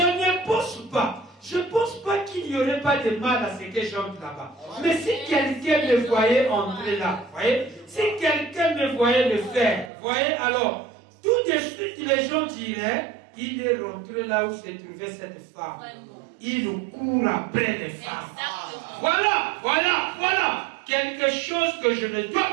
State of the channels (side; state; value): left; drops out; at 9.9 s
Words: ne pense pas. Je ne pense pas qu'il n'y aurait pas de mal à ce que j'entre là-bas. Mais si quelqu'un me voyait entrer là, voyez, si quelqu'un me voyait le faire, voyez, alors, tout de suite les gens diraient, il est rentré là où se trouvait cette femme. Il nous court après les femmes. Voilà. Quelque chose que je ne dois